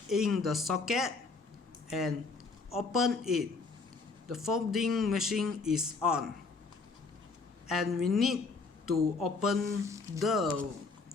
in the socket and open it. The folding machine is on, and we need to open the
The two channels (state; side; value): quieter; right; 4.2 dB